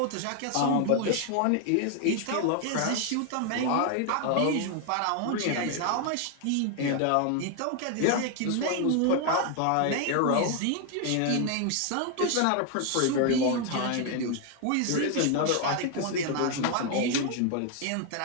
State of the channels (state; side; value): different; both; correlation 0.01